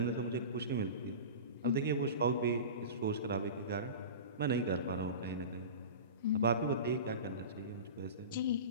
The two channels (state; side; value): inverted; both; correlation -0.31